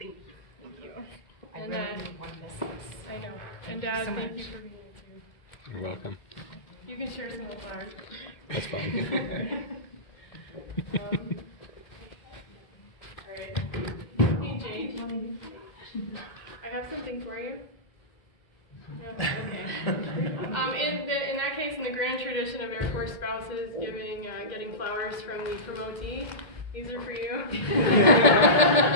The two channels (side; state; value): right; late; 2.1 ms